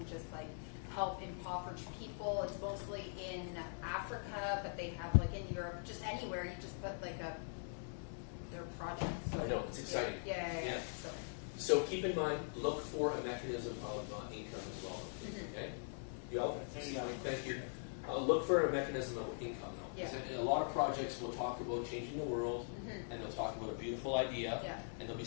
just like help impoverished people. It's mostly in Africa, but they have like in Europe, just anywhere. You just put like their project. So, I know, it's exciting. Yeah. So keep in mind, look for a mechanism of income as well. Okay? You all? Thank you. Look for a mechanism of income, though. Yeah. A lot of projects will talk about changing the world, and they'll talk about a beautiful idea, and there'll be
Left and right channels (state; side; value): silent; right; digital silence